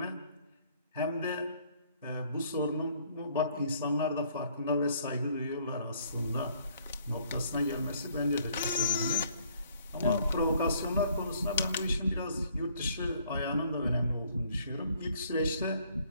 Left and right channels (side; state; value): both; inverted; correlation -0.63